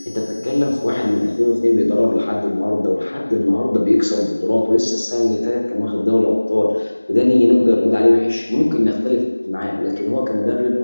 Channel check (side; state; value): both; inverted; correlation -1.00